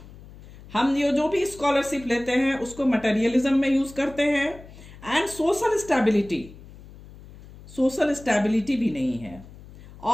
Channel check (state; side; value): noise; left; hum, 19 dB below the sound